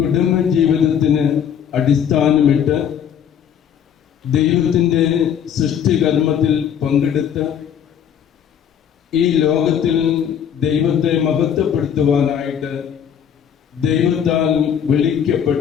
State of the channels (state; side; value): quieter; right; 8.6 dB